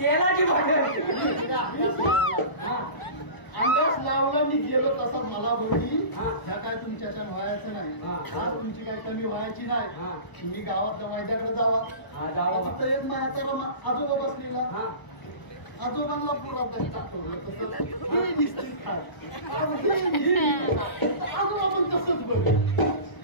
बॉटल अंदाज लावला मी गेलो तसा मला बोलली ह्या काय तुमच्याच्या व्हायचं नाही आज तुमची काही कमी व्हायची नाही तुम्ही गावातल्या वैद्याकडे जावा फक्त एक माझ्या आजोबा बसलेला आजोबांना पुरात टाकवलं आजोबा पण तसंच बघ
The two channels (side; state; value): right; late; 1.0 ms